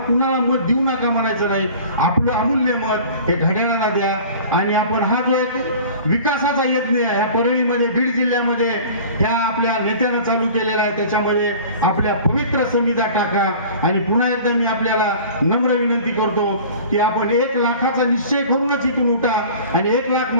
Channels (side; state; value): both; inverted; correlation -0.43